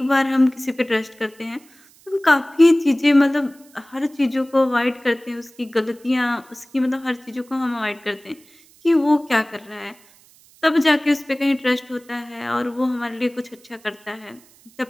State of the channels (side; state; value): right; noise; hiss, 28 dB below the sound